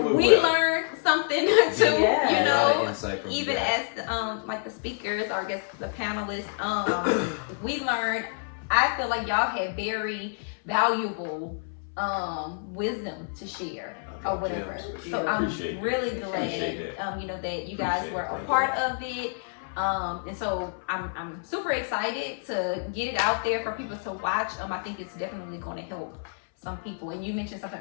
went we well. learned something too. You A lot know, of insight from even you guys. as like the speakers or I guess the panelists, we learned. I feel like y'all had very valuable wisdom to share or whatever. So I'm Appreciate it. really Appreciate glad, you know, that you guys Appreciate were it. a Thank part of it. And so I'm super excited to get it out there for people to watch. I think it's definitely going to help some people. And you mentioned something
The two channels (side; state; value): right; silent; 59 dB below the other